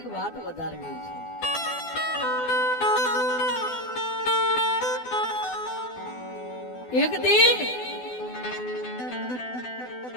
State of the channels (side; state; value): right; late; 12 ms